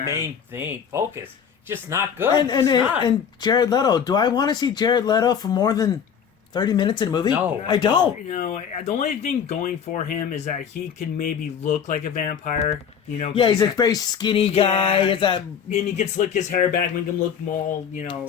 thing. Focus. Just not good. And Jared Leto. Do I want to see Jared Leto for more than 30 minutes in a movie? No. I don't. The only thing going for him is that he can maybe look like a vampire. Yeah, he's a very skinny guy. And he can slick his hair back, make him look more,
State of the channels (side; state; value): right; quieter; 7.6 dB